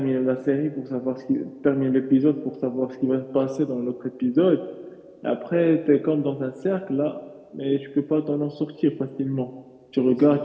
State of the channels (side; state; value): both; identical; correlation 1.00